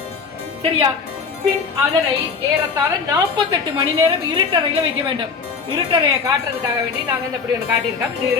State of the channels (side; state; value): right; quieter; 5.3 dB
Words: சரியா? பின் அதனை ஏறத்தாழ 48 மணி நேரம் இருட்டறையில் வைக்க வேண்டும். இருட்டறையை காட்டுறதுக்காக வேண்டி நாங்கள் இந்த இப்படி ஒன்று காட்டியிருக்கோம். இது